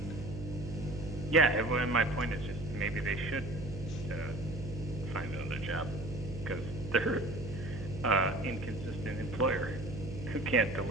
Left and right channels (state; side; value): noise; right; hum, 9 dB below the sound